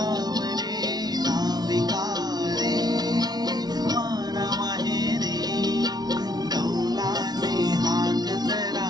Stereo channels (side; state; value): left; late; 0.19 ms